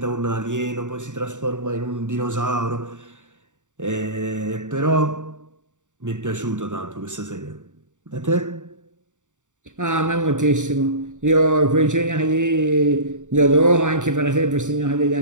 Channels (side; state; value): left; late; 0.86 ms